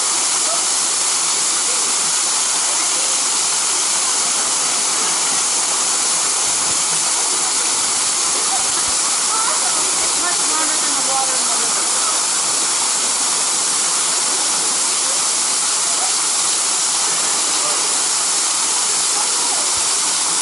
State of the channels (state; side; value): normal; both; correlation 0.91